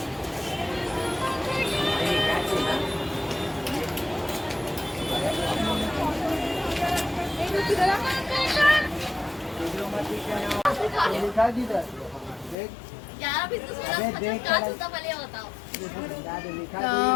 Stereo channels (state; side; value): drops out; right; at 12.6 s